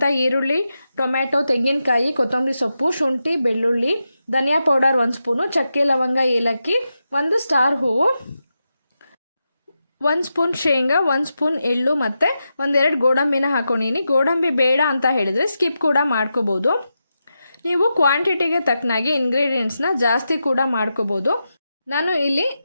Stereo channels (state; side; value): inverted; both; correlation -0.88